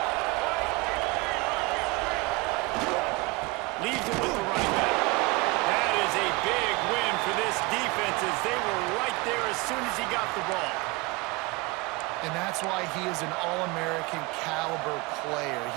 Leaves it with the running back. That is a big win for this defense, as they were right there as soon as he got the ball. And that's why he is an All-American caliber player.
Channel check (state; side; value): quieter; left; 24.8 dB